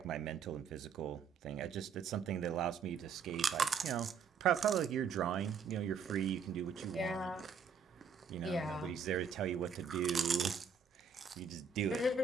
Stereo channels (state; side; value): quieter; left; 6.0 dB